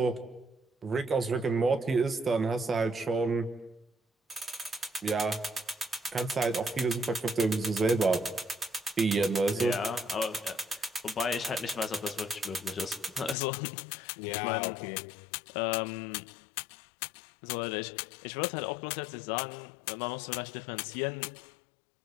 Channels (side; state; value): right; drops out; at 13.4 s